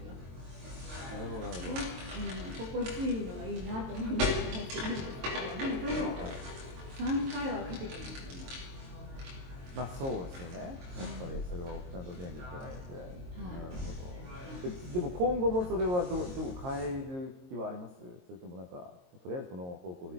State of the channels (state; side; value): late; left; 22 ms